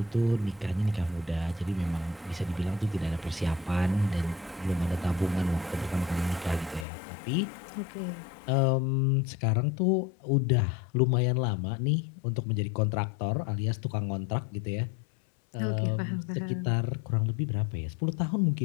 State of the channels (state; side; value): drops out; right; at 6.9 s